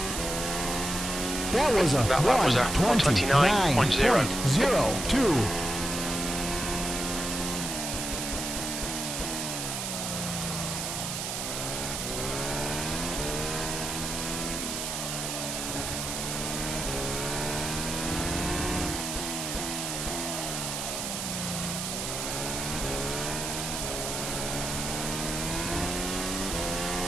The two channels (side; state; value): right; noise; hiss, 3 dB below the sound